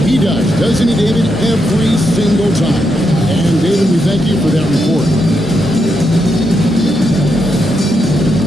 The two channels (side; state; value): both; normal; correlation 0.82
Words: He does, doesn't he, David? Every single time. And, David, we thank you for that report.